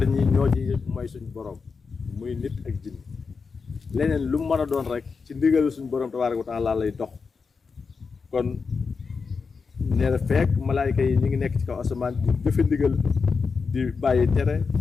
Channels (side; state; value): right; quieter; 5.0 dB